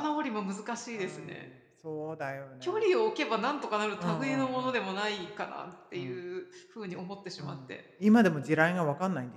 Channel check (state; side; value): identical; both; correlation 1.00